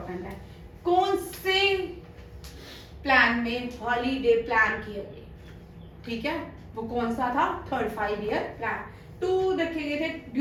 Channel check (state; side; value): identical; both; correlation 1.00